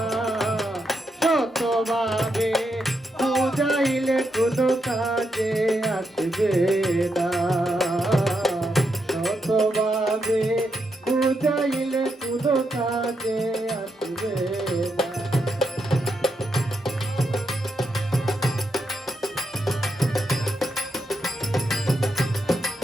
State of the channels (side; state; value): both; normal; correlation 0.82